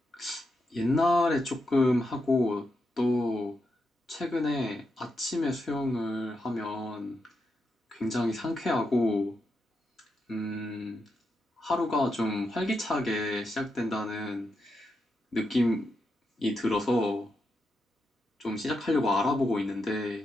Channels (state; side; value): normal; both; correlation 0.85